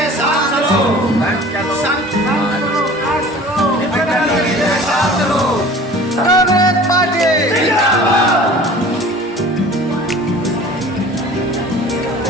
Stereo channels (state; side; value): normal; both; correlation 0.44